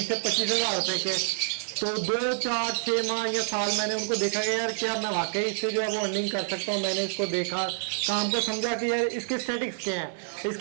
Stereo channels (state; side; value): silent; left; digital silence